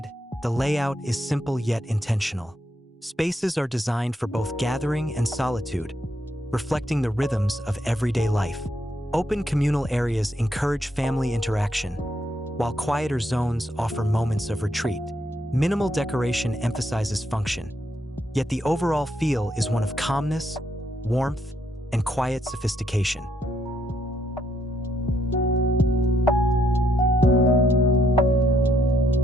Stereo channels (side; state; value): both; normal; correlation 0.75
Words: the layout is simple yet intentional. Spaces are designed for both gathering and solitude, reflecting the rhythms of everyday life. Open communal areas encourage family interaction, while quieter zones offer moments of retreat. Minimal decoration emphasizes function, yet the overall feel is one of calmness, warmth, and quiet sophistication.